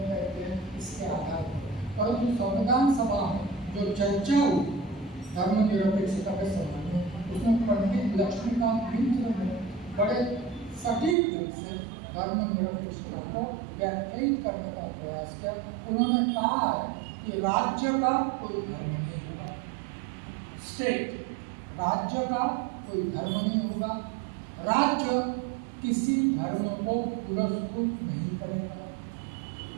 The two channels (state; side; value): drops out; left; at 11.2 s